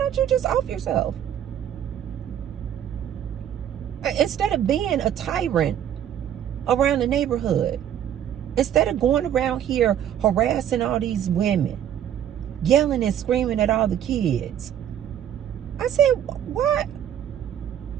you just off yourself? Instead of being a tyrant around the neighborhood, instead of going around here harassing all these women, yelling and screaming at all the kids, I said, why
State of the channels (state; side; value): quieter; left; 10.1 dB